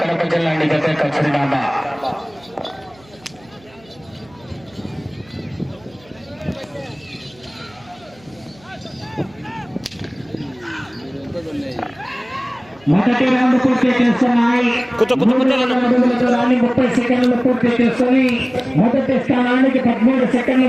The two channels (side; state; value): right; noise; hum, 27 dB below the sound